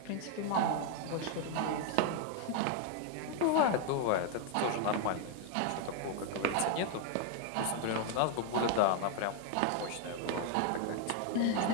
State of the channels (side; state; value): both; different; correlation 0.01